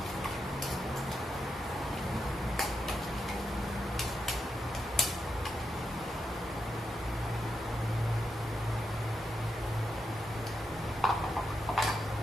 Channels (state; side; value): normal; both; correlation 0.85